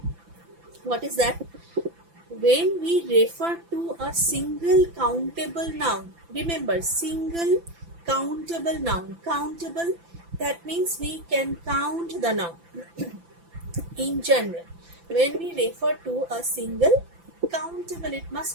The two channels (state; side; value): late; left; 5.9 ms